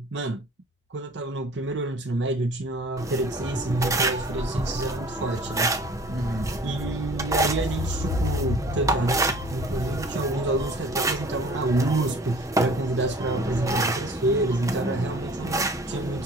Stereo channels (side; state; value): both; normal; correlation 0.48